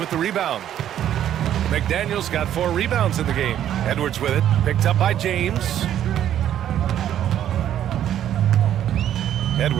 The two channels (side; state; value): left; quieter; 10.9 dB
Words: the rebound. McDaniels got 4 rebounds in the game. Edwards with it. Picked up by James.